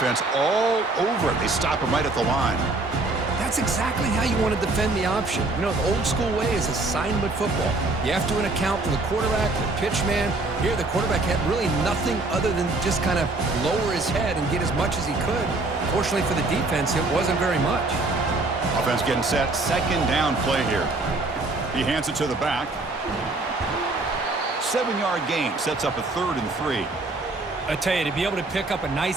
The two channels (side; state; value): left; quieter; 3.1 dB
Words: all over it. They stop him right at the line. That's exactly how you want to defend the option. You know, the old school way is assignment football. You have to account for the quarterback, the pitch man. Here, the quarterback had really nothing other than just kind of lower his head and get as much as he could. Fortunately for the defense, it wasn't very much. Offense getting set. Second down play here. He hands it to the back. 7-yard gain sets up a 3rd and 3. I tell you, to be able to pick up a